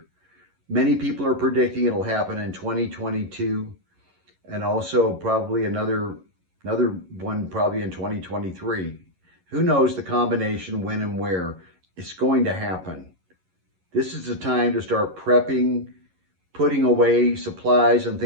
Many people are predicting it'll happen in 2022 and also probably another one probably in 2023. Who knows the combination when and where it's going to happen. This is the time to start prepping, putting away supplies and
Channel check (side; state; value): left; late; 11 ms